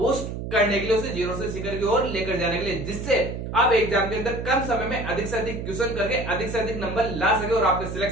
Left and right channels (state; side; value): noise; right; hum, 6 dB below the sound